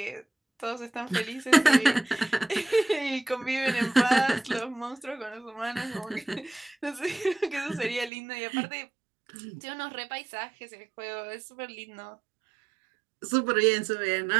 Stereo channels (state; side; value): drops out; left; at 8.1 s